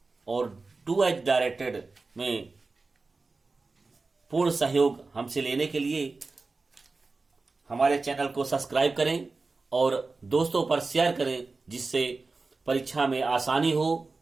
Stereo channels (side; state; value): left; quieter; 3.8 dB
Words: और डू एज डायरेक्टेड में पूर्ण सहयोग हमसे लेने के लिए हमारे चैनल को सब्सक्राइब करें और दोस्तों पर शेयर करें, जिससे परीक्षा में आसानी हो।